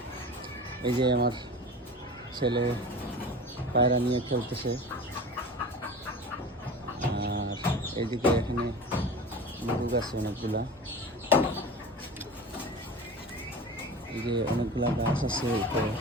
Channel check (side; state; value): both; normal; correlation 0.34